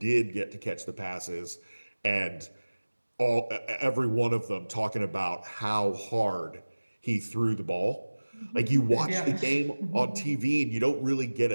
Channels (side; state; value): both; inverted; correlation -1.00